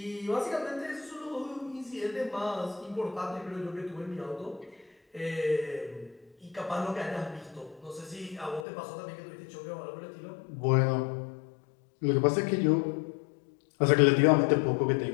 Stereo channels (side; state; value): right; drops out; at 8.7 s